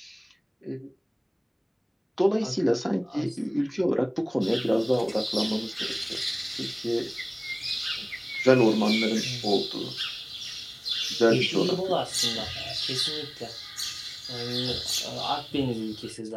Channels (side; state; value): both; identical; correlation 1.00